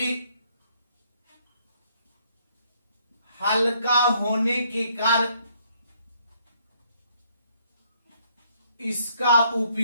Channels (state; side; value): inverted; both; correlation -0.68